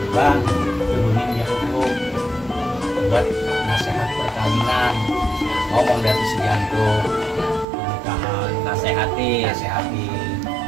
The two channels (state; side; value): drops out; left; at 7.7 s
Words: bang turunin jantung buat nasihat perkawinan, ngomong dari sejantung pernikahan, nasehati